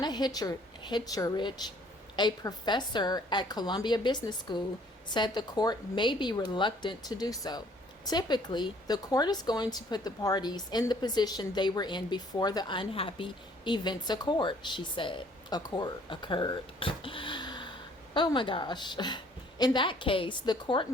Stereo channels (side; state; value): both; normal; correlation 0.59